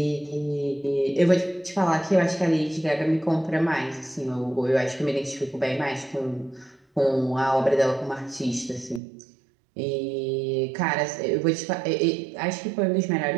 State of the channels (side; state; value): left; drops out; at 9.0 s